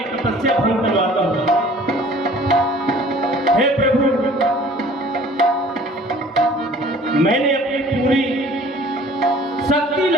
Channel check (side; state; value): both; normal; correlation 0.50